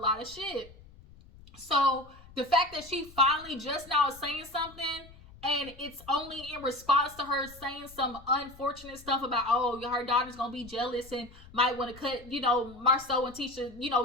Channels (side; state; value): left; noise; rumble, 21 dB below the sound